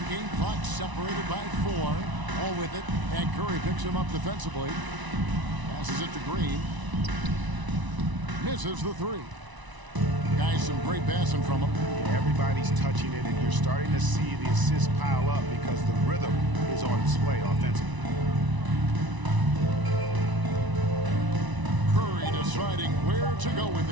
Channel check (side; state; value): left; late; 1.0 ms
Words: game clock separated by 4, all with it, and Curry picks him up defensively. Passes it to Green. Misses the 3. Guys, some great passing from him. Everybody's touching it, and you're starting to see the assists pile up because the rhythm is on display offensively. Curry deciding where to go with